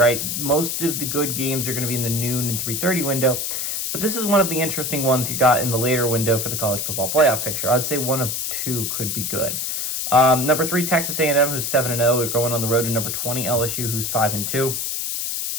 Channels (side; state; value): left; noise; hiss, 2 dB below the sound